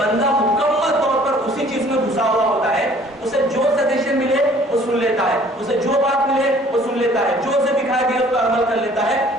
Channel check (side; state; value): both; normal; correlation 0.55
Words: मुकम्मल तौर पर उसी चीज में घुसा हुआ होता है। उसे जो सजेशन मिले वो सुन लेता है, उसे जो बात मिले वो सुन लेता है, عمل کر لیتا ہے